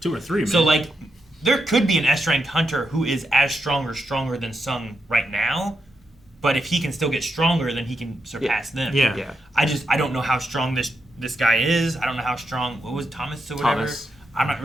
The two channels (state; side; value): normal; both; correlation 0.84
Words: 2 or 3, man. So like, there could be an S rank hunter who is as strong or stronger than Sung right now, but if he can still get stronger, then he can surpass them. Yeah. I don't know how strong this guy is. I don't know how strong. What was Thomas or whatever? Thomas. I'm not